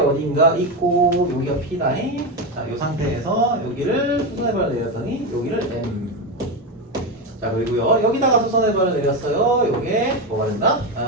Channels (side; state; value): both; normal; correlation 0.14